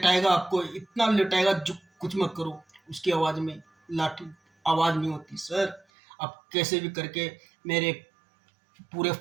आपको, इतना लेटाएगा जो कुछ मत करो। उसकी आवाज़ में लाठी आवाज़ नहीं होती सर। आप कैसे भी करके मेरे पूरे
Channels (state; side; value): drops out; left; at 5.9 s